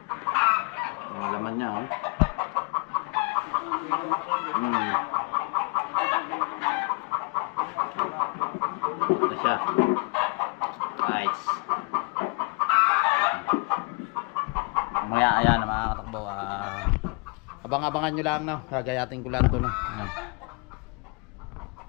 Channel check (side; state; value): right; quieter; 31.0 dB